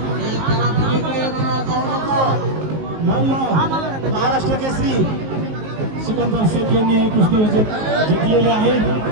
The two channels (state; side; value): late; left; 19 ms